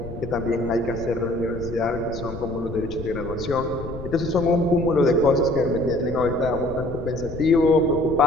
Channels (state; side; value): noise; left; rumble, 11 dB below the sound